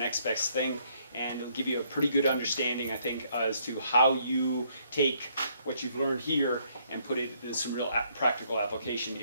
best thing, and it'll give you a pretty good understanding, I think, as to how you take what you've learned here and put it into some real practical application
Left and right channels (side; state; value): both; inverted; correlation -0.69